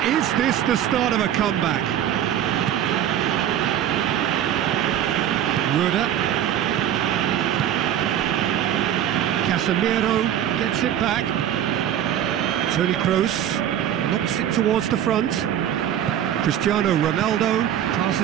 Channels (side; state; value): left; quieter; 10.6 dB